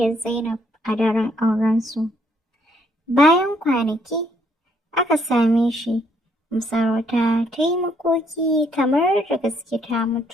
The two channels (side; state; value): both; normal; correlation 0.69